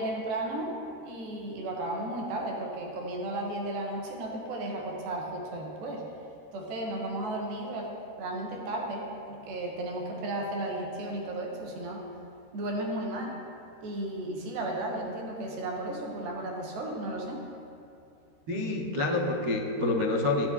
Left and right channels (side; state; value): left; late; 13 ms